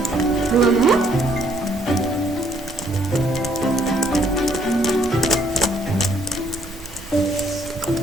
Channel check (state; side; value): normal; both; correlation 0.66